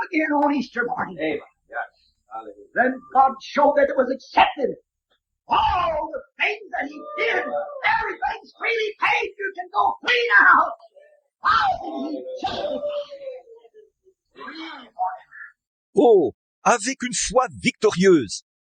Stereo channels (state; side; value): identical; both; correlation 1.00